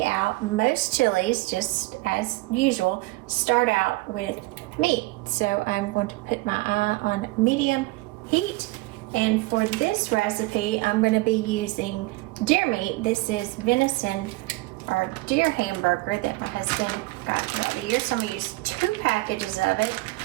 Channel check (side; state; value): left; quieter; 21.7 dB